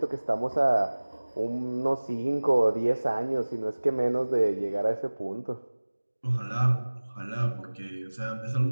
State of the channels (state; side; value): inverted; both; correlation -1.00